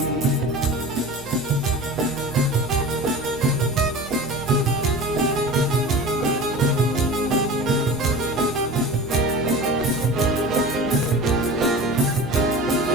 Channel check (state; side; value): normal; both; correlation 0.35